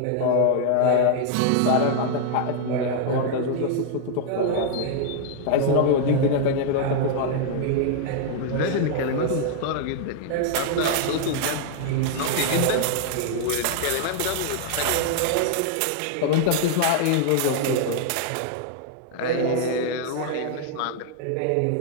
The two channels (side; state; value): both; different; correlation 0.00